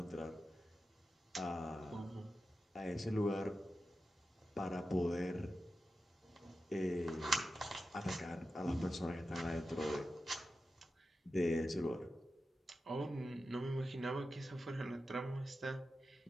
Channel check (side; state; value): both; normal; correlation 0.91